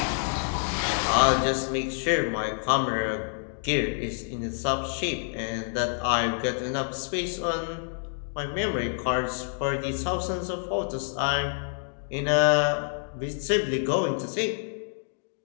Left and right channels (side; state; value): right; silent; digital silence